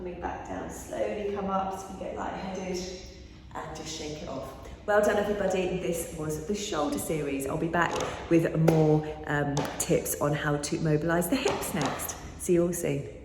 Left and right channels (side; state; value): both; identical; correlation 1.00